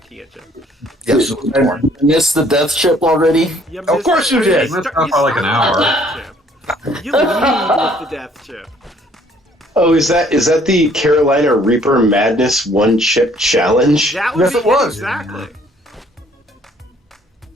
chip. Yes, it was more. Missed the death chip already? You Of course you did. Missed out by like an hour. You lead with the death chip. Oh, is that the Carolina Reaper Madness one chip challenge? That would Yes, be it was. exactly.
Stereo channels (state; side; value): normal; both; correlation 0.61